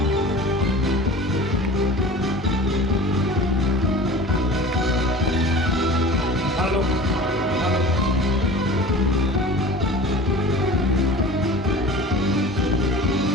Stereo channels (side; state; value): both; normal; correlation 0.39